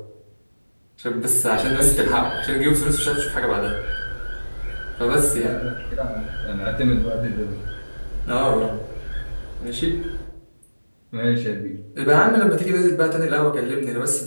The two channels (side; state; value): both; inverted; correlation -1.00